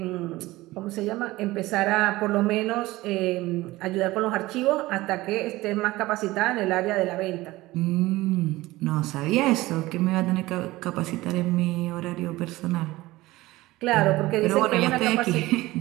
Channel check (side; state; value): left; quieter; 18.8 dB